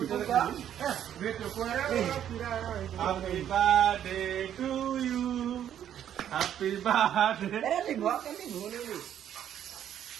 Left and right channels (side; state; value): left; quieter; 10.2 dB